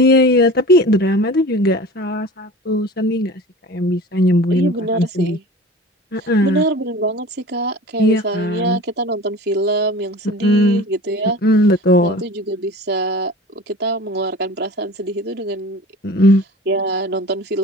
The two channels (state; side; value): normal; both; correlation 0.39